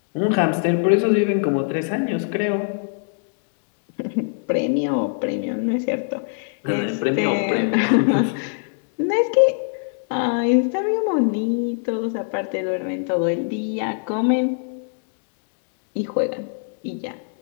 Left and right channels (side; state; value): right; silent; digital silence